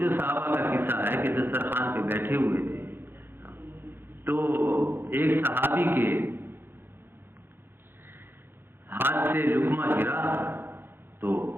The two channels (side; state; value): left; late; 0.10 ms